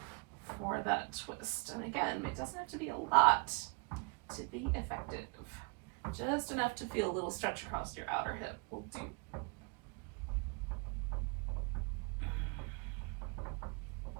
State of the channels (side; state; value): left; quieter; 32.9 dB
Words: For that twist. And again, it doesn't have to be a lot to be effective. Just enough to feel a little stretch across your outer hip will do.